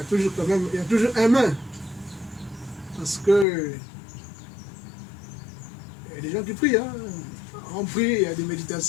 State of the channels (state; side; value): drops out; right; at 3.5 s